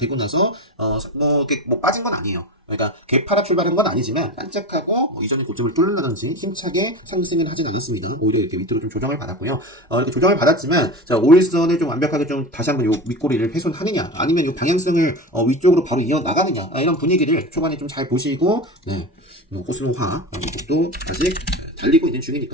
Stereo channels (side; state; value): both; normal; correlation 0.27